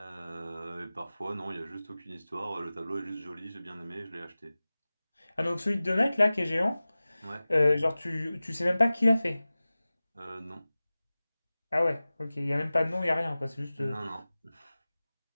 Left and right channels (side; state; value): both; inverted; correlation -0.97